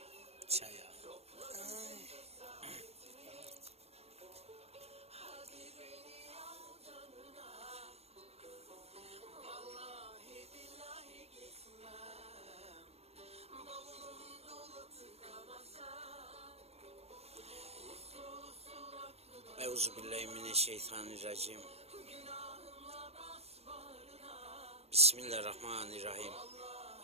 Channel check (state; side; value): late; left; 0.30 ms